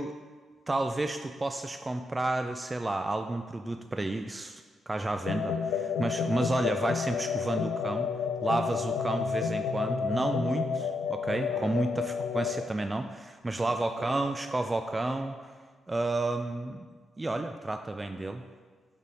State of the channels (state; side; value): normal; both; correlation 0.82